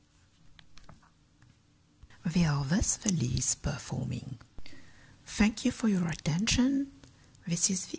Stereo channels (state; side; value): identical; both; correlation 1.00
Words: We are thus the least performing. Thank you for your attention. This is the